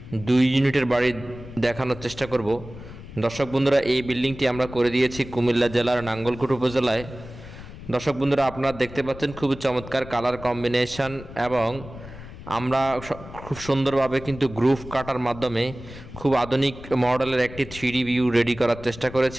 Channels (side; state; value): left; noise; rumble, 15 dB below the sound